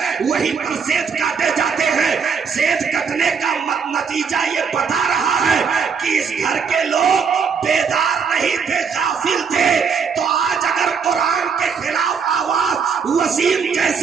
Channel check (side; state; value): left; quieter; 6.1 dB